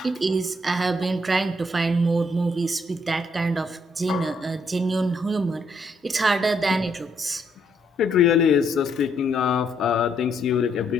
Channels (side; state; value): both; normal; correlation 0.73